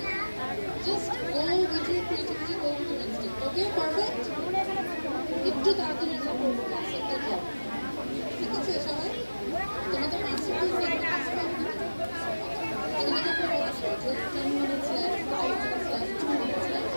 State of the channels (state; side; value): inverted; both; correlation -1.00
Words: Just go with your creativity, go with your instinct. Okay, perfect? একটু তাড়াতাড়ি করবো ক্লাসটা যাও। ঠিক আছে সবাই? তোমাদের মাস্টারপিস দেখে কাজ করবে না? এখানে তো বলেছে যে 10 minutes left, 5 minutes left, 2 minutes left.